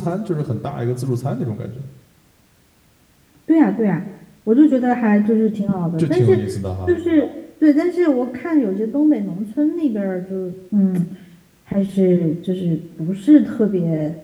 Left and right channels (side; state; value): both; identical; correlation 1.00